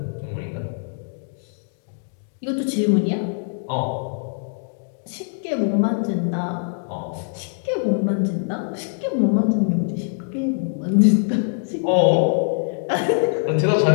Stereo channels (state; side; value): silent; right; 64 dB below the other